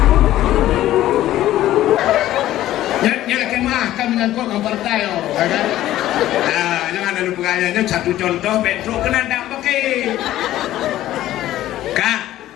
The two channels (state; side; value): quieter; right; 14.0 dB